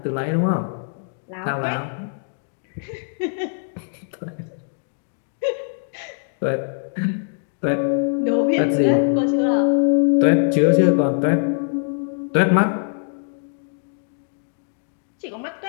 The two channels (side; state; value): right; silent; digital silence